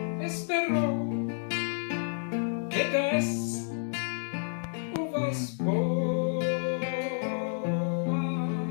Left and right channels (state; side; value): silent; right; digital silence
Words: esperou que desse uvas boas,